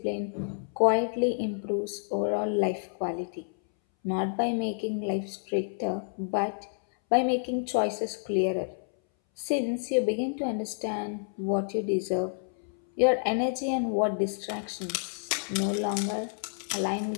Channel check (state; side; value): silent; right; 58 dB below the other